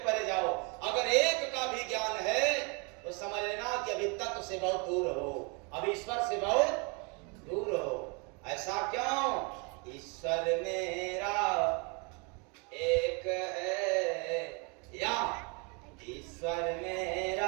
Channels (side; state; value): left; quieter; 32.8 dB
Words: जाओ। अगर एक का भी ज्ञान है तो समझ लेना कि अभी तत्व से बहुत दूर हो, अभी ईश्वर से बहुत दूर हो। ऐसा क्यों? ईश्वर मेरा एक है, या ईश्वर